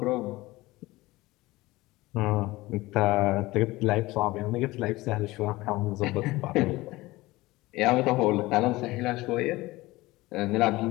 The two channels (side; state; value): right; quieter; 19.7 dB